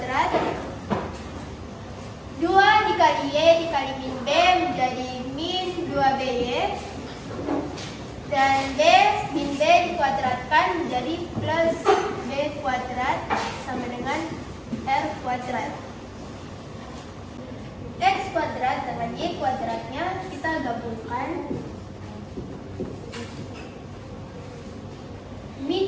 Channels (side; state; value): both; identical; correlation 1.00